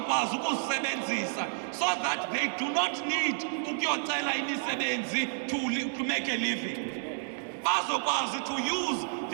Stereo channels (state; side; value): silent; left; digital silence